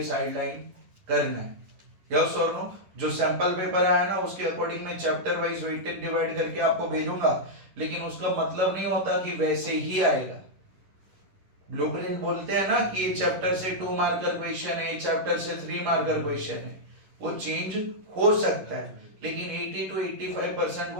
साइडलाइन करना है। यस और नो? जो सैंपल पेपर आया ना उसके अकॉर्डिंग मैं चैप्टर वाइज वेटेड डिवाइड करके आपको भेजूंगा, लेकिन उसका मतलब नहीं होता कि वैसे ही आएगा। ब्लूप्रिंट बोलते हैं ना कि ये चैप्टर से 2 मार्कर क्वेश्चन है, चैप्टर से 3 मार्कर क्वेश्चन है, वो चेंज हो सकता है, लेकिन 80 to 85%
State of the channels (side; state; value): left; late; 11 ms